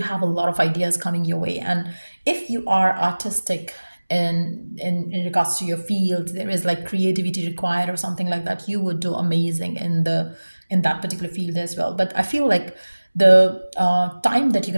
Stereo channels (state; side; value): inverted; both; correlation -1.00